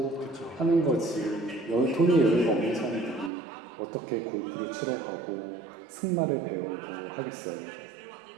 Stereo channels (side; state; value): left; drops out; at 3.3 s